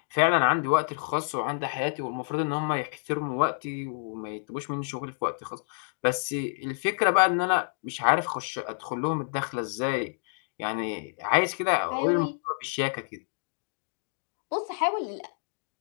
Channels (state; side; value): silent; right; digital silence